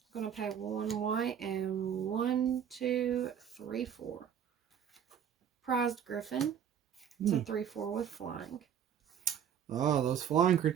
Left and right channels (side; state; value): left; quieter; 8.7 dB